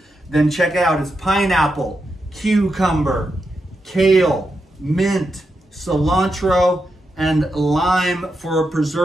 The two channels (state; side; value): normal; both; correlation 0.86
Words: then check it out. It's pineapple, cucumber, kale, mint, cilantro, and lime for a